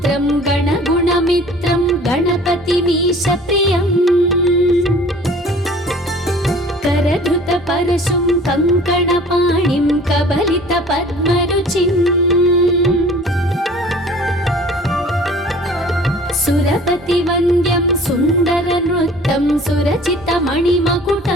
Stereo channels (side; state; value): both; normal; correlation 0.48